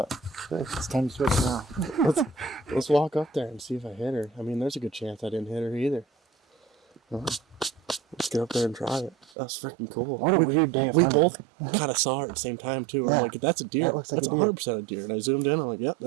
it's time to switch now. Let's walk up there and see if I hit her. I mean, there's a good chance I didn't hit her either. Well, let's get up there and try it. That's freaking cool. What a weird day of We hunting. both kind of saw it at the same time too. Yeah. I'm like, that's a deer. That looks like That's a deer. 100% a deer. And I zoomed in. I'm like, yep,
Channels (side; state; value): left; drops out; at 9.2 s